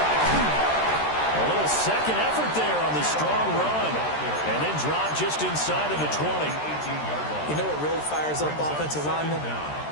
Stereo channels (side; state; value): right; late; 13 ms